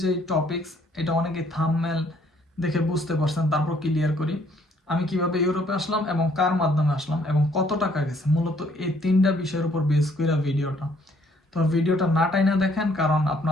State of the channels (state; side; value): normal; both; correlation 0.65